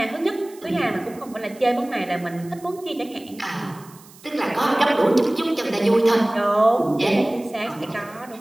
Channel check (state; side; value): noise; right; hiss, 23 dB below the sound